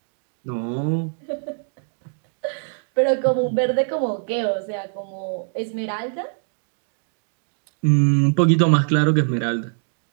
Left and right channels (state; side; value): silent; left; 59 dB below the other